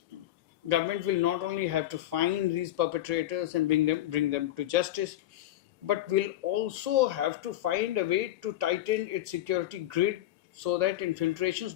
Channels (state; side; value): quieter; right; 13.7 dB